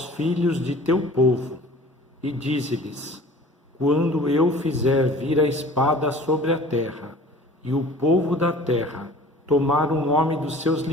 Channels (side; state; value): both; normal; correlation 0.45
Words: filhos de teu povo e dize-lhes: quando eu fizer vir a espada sobre a terra, e o povo da terra tomar um homem dos seus